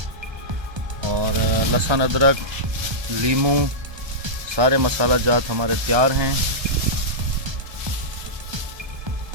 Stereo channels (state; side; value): late; left; 1.3 ms